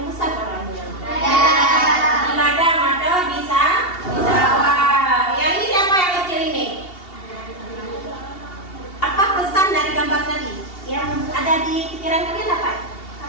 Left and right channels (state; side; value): late; right; 2.7 ms